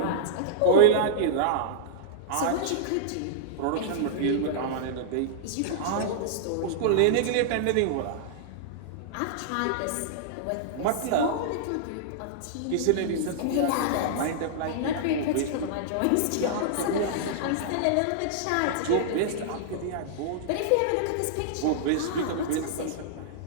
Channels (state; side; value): different; both; correlation -0.02